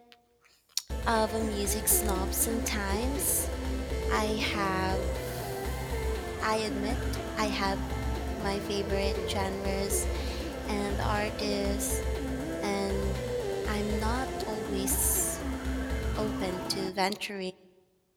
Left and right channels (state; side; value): identical; both; correlation 1.00